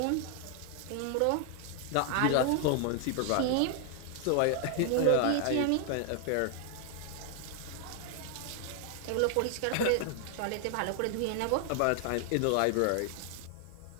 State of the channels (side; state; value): both; different; correlation 0.00